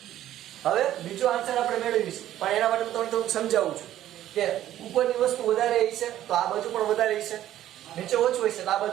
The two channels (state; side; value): quieter; left; 12.6 dB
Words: હવે બીજો આન્સર આપણે મેળવીશું પણ એના માટે હું તમને થોડુંક સમજાવું છું કે ઉપરની વસ્તુ વધારે હશે તો આ બાજુ પણ વધારે હશે, નીચે ઓછું હશે તો આ